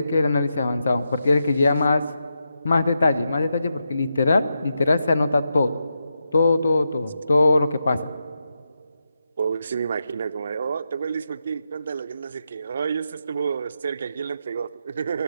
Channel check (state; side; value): inverted; both; correlation -0.86